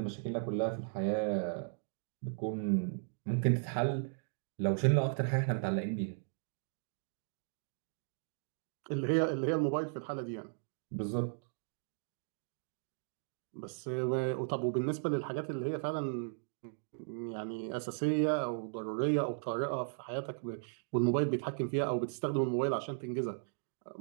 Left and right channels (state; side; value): silent; left; digital silence